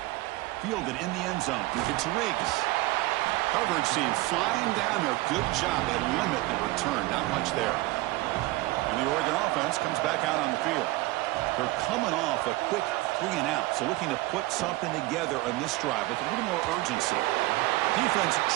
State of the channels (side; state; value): left; quieter; 19.8 dB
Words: Fielded in the end zone. It's Riggs. Coverage team flying down there. Good job. They limit the return. Not much there. And the Oregon offense comes back out on the field. They're coming off a quick 3-and-out, so looking to put something together on this drive with a little more urgency. Defense